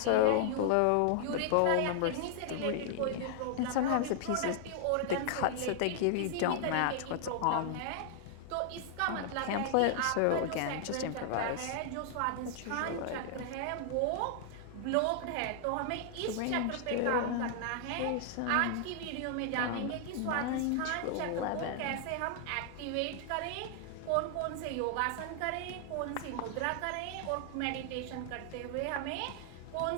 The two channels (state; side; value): different; both; correlation 0.00